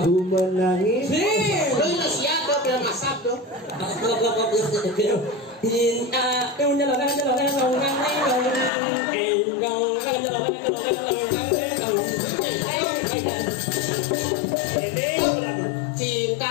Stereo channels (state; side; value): drops out; right; at 8.7 s